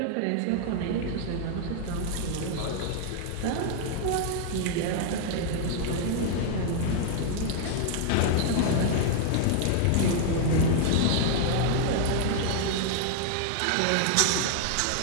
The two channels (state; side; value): different; both; correlation 0.00